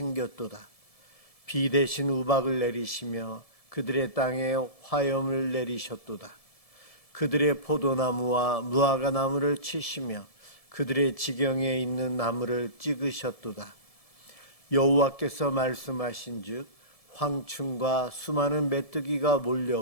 비 대신 우박을 내리시며 그들의 땅에 화염을 내리셨도다. 그들의 포도나무와 무화과나무를 치시며 그들의 지경에 있는 나무를 찍으셨도다. 여호와께서 말씀하신즉 황충과 수많은 메뚜기가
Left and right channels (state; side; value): late; right; 1.7 ms